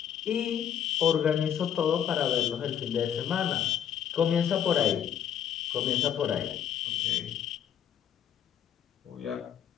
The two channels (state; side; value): quieter; right; 9.3 dB